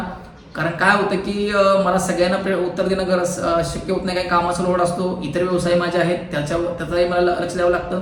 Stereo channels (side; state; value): both; identical; correlation 1.00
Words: कारण काय होतं की मला सगळ्यांना उत्तर देणं शक्य होत नाही, काही कामाचा लोड असतो, इतर व्यवसाय माझे आहेत त्याचाही मला लक्ष द्यावं लागतं.